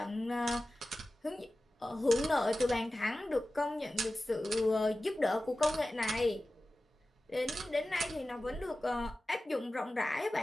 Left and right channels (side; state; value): both; normal; correlation 0.95